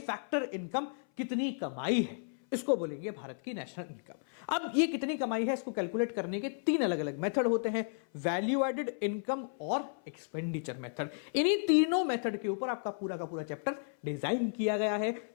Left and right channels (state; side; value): silent; right; 55 dB below the other